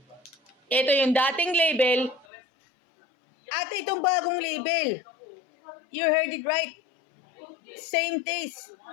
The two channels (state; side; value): drops out; right; at 2.2 s